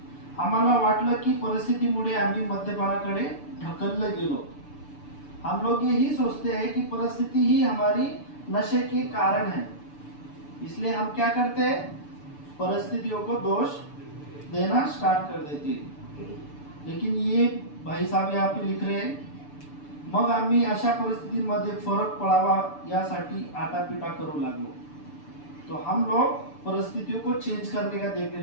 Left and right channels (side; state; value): right; late; 6.9 ms